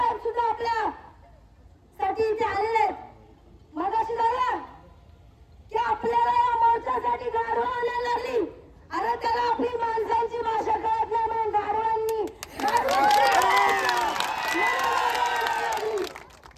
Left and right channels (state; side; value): identical; both; correlation 1.00